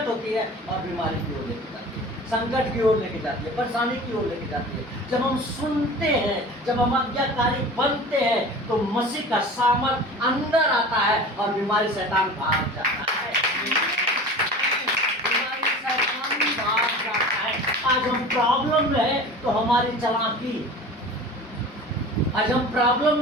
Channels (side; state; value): both; normal; correlation 0.38